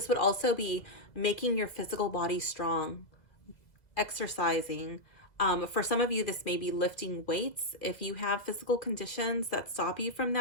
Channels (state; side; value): late; right; 2.0 ms